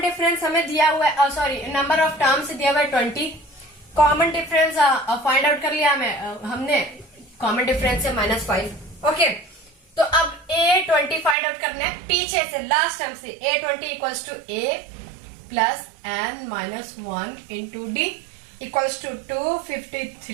हमें दिया हुआ है, सॉरी नंबर ऑफ टर्म्स दिया हुआ है 20। कॉमन डिफरेंस फाइंड आउट कर लिया हमने कॉमन डिफरेंस से -5। ओके, तो अब A20 फाइंड आउट करना है पीछे से, लास्ट टर्म से। A20 equals to A plus n minus 1 into D equals to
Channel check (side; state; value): left; drops out; at 11.4 s